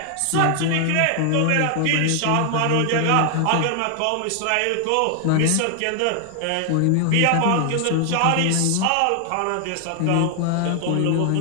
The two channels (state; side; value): different; both; correlation 0.00